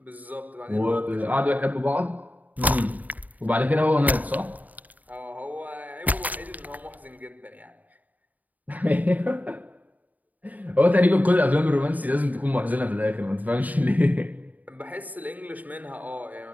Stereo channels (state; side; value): late; left; 0.077 ms